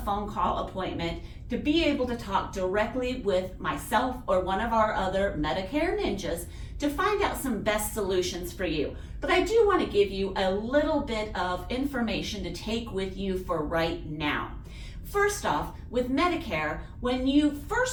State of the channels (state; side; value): identical; both; correlation 1.00